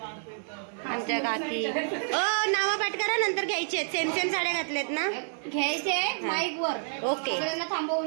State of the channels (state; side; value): silent; left; digital silence